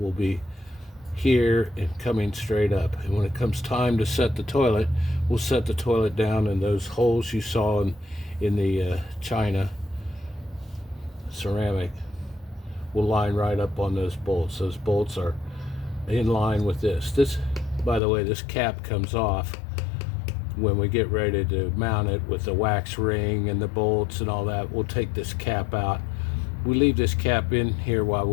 be here and coming straight up. And when it comes time to set the toilet, we'll set the toilet down, and those holes you saw in the china ceramic will line right up on those bolts. Those bolts are in line with this. This, by the way, this cap comes off when we get ready to mount it with the wax ring and the bolts and all that. We'll take this cap out. We leave this cap in here while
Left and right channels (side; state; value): right; drops out; at 18.0 s